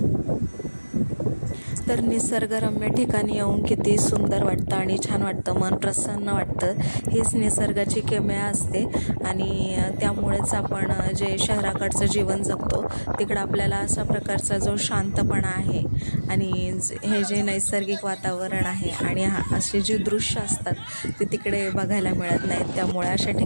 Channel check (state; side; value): inverted; both; correlation -1.00